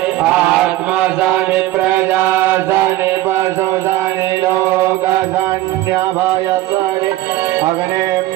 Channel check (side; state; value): left; quieter; 16.0 dB